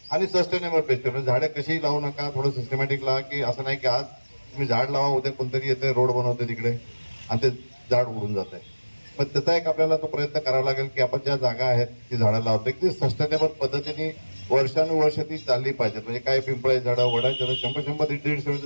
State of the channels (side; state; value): both; inverted; correlation -1.00